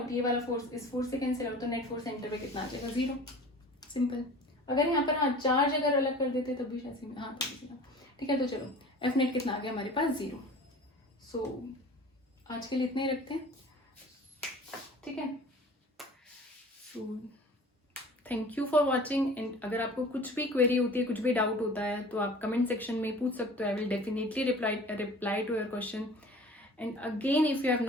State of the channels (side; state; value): both; normal; correlation 0.43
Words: ये वाला फोर्स इस फोर्स से कैंसिल आउट, तो नेट फोर्स सेंटर पे कितना आ जाएगा, 0। सिंपल। अगर यहाँ पर हाँ चार्ज अगर अलग कर देते तब भी शायद हाँ ठीक है। तो चलो एफ नेट कितना आ गया हमारे पास, 0। सो आज के लिए इतने ही रखते हैं, ठीक है। So thank you for watching, and अगर आपको कुछ भी क्वेरी होती है, कुछ भी डाउट होता है, तो आप कमेंट सेक्शन में पूछ सकते हो। I will definitely reply to your question. And again, if you have